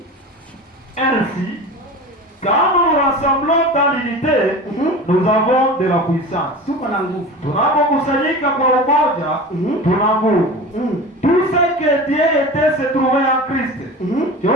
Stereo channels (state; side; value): normal; both; correlation 0.33